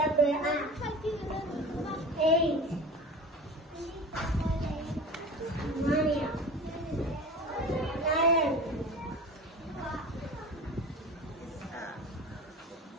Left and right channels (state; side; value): normal; both; correlation 0.35